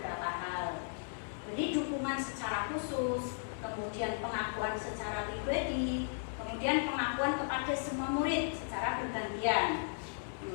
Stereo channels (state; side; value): silent; right; digital silence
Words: hal. Jadi dukungan secara khusus, kemudian pengakuan secara pribadi, kemudian pengakuan kepada semua murid secara bergantian,